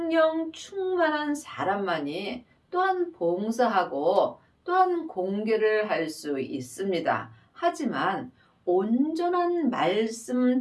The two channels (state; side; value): identical; both; correlation 1.00